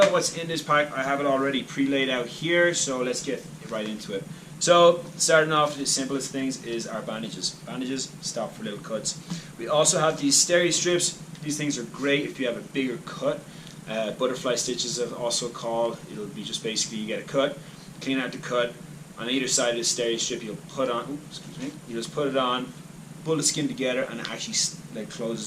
what's in this pack. I have it already pre-laid out here, so let's get right into it. So starting off, the simplest things is our bandages. Bandages stop for little cuts. We also have these steri strips. These things are great if you have a bigger cut. Butterfly stitches are also called. It'll be just basically you get a cut, clean out the cut. On either side of the steri strip, you'll put on. You just put it on, pull the skin together, and it actually like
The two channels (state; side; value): identical; both; correlation 1.00